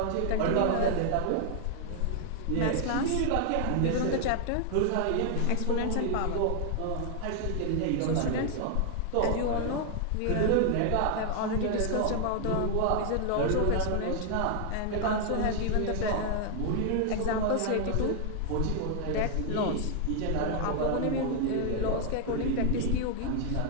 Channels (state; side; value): different; both; correlation 0.00